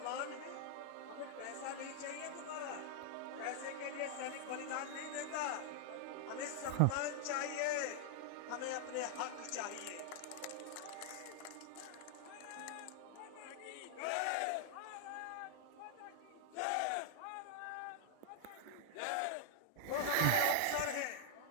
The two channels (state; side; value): different; both; correlation 0.00